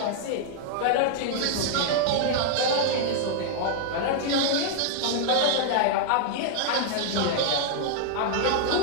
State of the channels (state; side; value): different; both; correlation -0.01